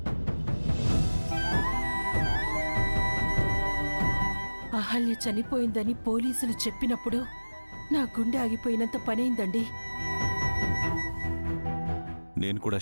అహల్య చనిపోయిందని పోలీసులు చెప్పినప్పుడు నా గుండె ఆగిపోయినంత పనైందండి. నేను కూడా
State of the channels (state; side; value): inverted; both; correlation -1.00